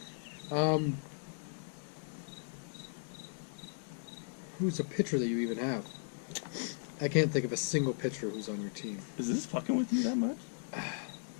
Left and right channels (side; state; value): right; silent; digital silence